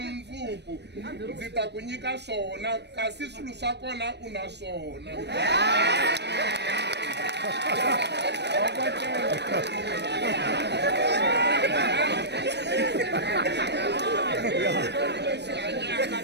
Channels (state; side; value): late; left; 0.50 ms